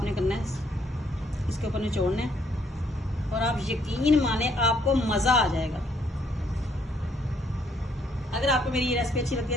करना है इसके ऊपर निचोड़ना है और आप यकीन माने आपको मजा आ जाएगा। अगर आपको मेरी ये रेसिपी अच्छी लगती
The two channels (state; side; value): normal; both; correlation 0.69